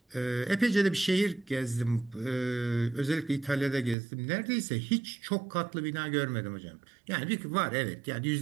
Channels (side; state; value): left; drops out; at 4.0 s